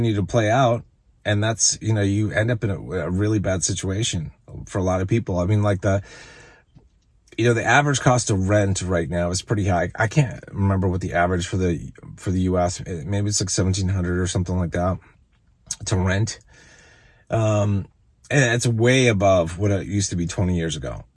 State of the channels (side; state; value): both; identical; correlation 1.00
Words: to play out. And that's, you end up in a really bad situation for a lot of people. Like The average cost of rent right now is pretty high. I can't remember what the average for the US, maybe it's like 1,700 or something like that to rent. And it's way above what it used to be 20 years ago.